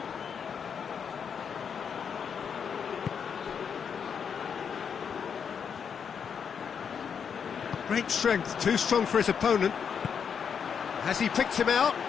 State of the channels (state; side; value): quieter; right; 7.0 dB